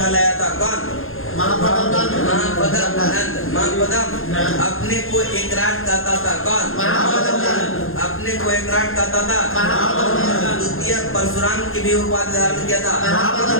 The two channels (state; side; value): late; right; 0.60 ms